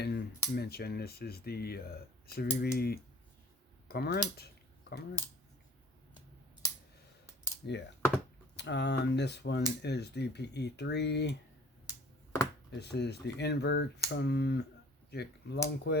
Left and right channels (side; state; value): both; normal; correlation 0.50